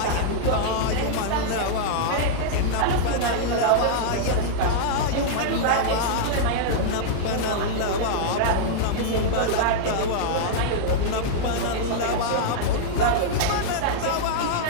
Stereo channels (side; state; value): both; different; correlation -0.02